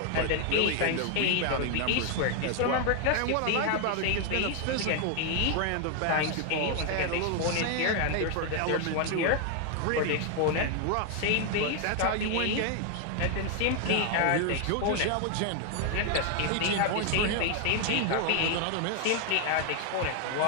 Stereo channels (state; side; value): different; both; correlation 0.01